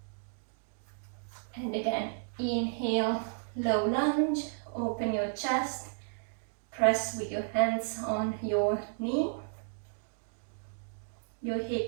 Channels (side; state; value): left; silent; digital silence